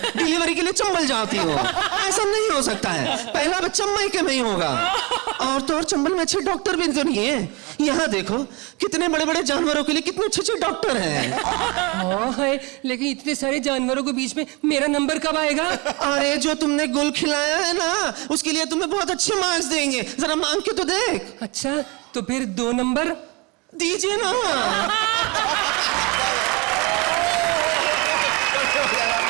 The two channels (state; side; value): quieter; left; 27.6 dB